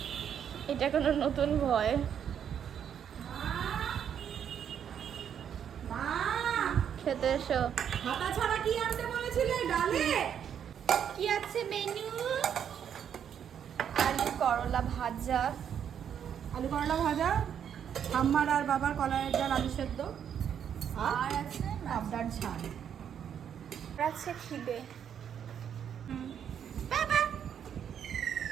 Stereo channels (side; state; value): left; quieter; 8.6 dB